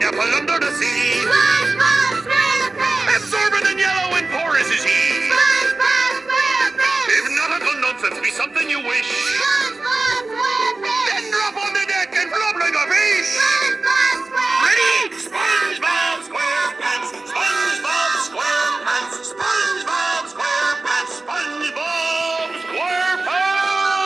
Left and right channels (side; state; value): left; quieter; 3.3 dB